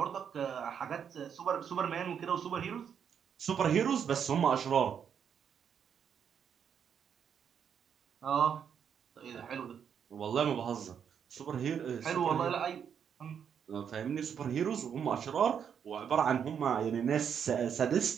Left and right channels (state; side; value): quieter; left; 7.8 dB